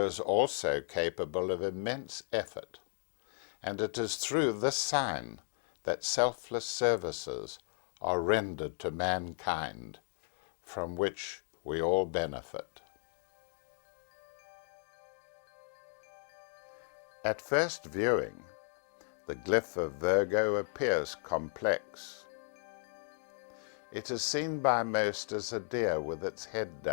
is also capable of immense effort, and it is through this sign that selfless services are rendered to mankind, from which we all benefit. At first viewing, the glyph of Virgo appears complex. It is seen by most as a deer with its head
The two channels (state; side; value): silent; right; digital silence